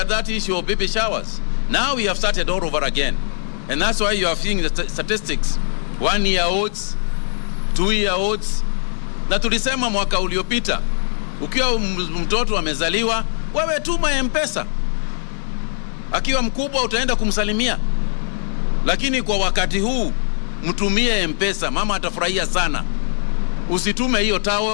that issue of baby showers. Now we have started all over again. And that's why you are seeing the statistics. 1-year-olds, 2-year-olds. Na tulisema mwaka uliopita, ukiwa mtoto amezaliwa, wewe tuma M-Pesa. Akiwa mkubwa utaenda kumsalimia. Lakini kwa wakati huu, mtumie M-Pesa, mama atafurahia sana. Usitume hiyo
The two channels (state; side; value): silent; right; digital silence